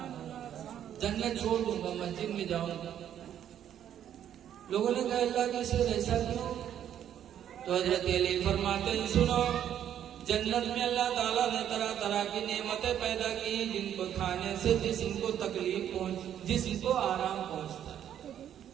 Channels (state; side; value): quieter; left; 10.2 dB